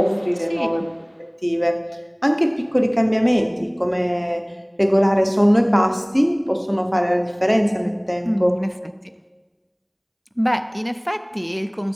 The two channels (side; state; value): both; identical; correlation 1.00